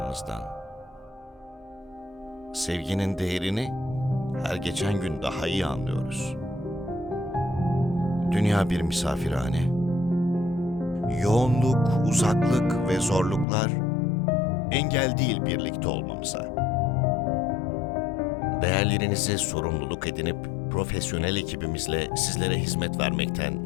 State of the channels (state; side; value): drops out; right; at 13.5 s